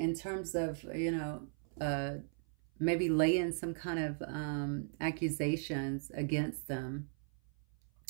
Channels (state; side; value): silent; left; 53 dB below the other